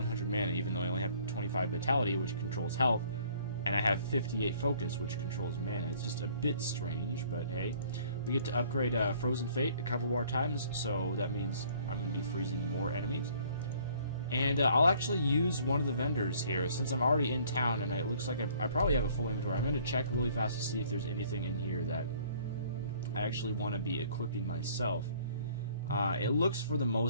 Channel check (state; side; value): inverted; both; correlation -0.57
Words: mana, even though I only have 25 vitality, which controls health, and I have 58 focus, which controls mana. It's just a bit strange, but hey. We get to upgrade Frozen Fate a couple more times, so that means I'm going to be freezing more enemies. And I'll actually use one of the vendors here, since I'm already in town, and it looks like I probably have a full inventory. I'm going to check really fast to see if there's anything in here that I actually want to be equipping myself. It looks for the